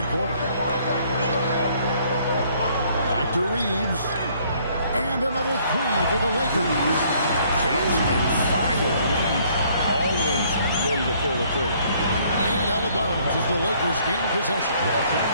quarter. Back to Reeves. And another 3 for the Lakers. Jackson and fire. Reeves always ready to pull the trigger. And out of bounds as the Lakers gain possession.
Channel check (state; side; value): inverted; both; correlation -0.63